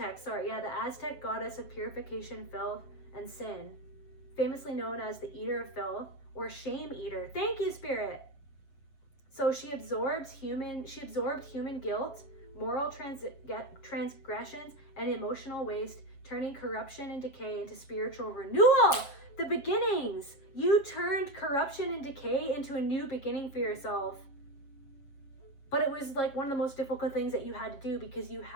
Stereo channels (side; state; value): right; late; 7.4 ms